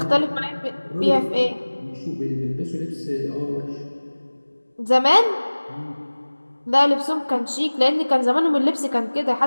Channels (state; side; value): inverted; both; correlation -1.00